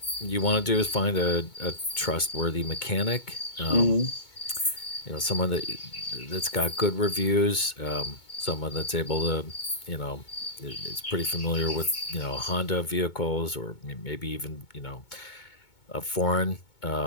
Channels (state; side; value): late; right; 2.2 ms